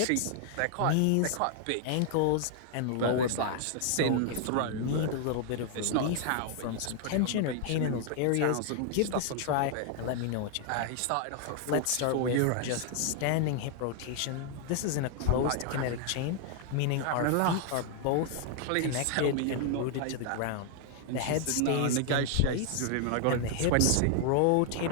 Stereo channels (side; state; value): both; different; correlation 0.00